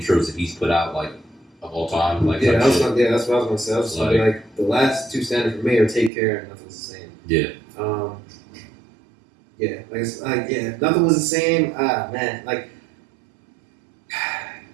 that he's put out like of all time. Like that's what I was gonna say. I was just like the last two standard for me are Take Care and Nothing Was the Same. Yeah. Nothing Was the Same. Man, like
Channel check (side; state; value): left; drops out; at 6.1 s